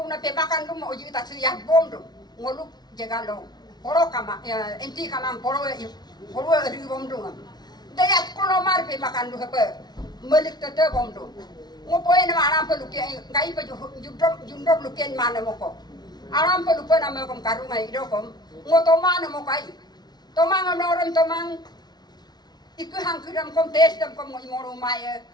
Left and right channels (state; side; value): late; right; 0.19 ms